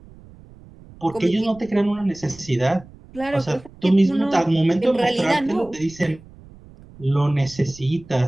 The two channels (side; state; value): right; noise; rumble, 22 dB below the sound